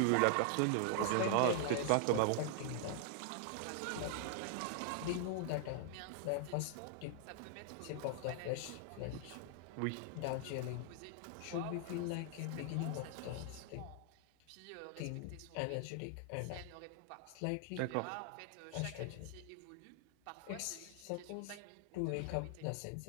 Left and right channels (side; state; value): both; different; correlation 0.00